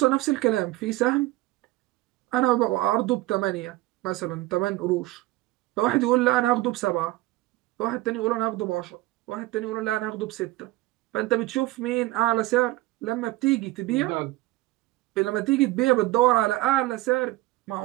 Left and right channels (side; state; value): left; quieter; 18.3 dB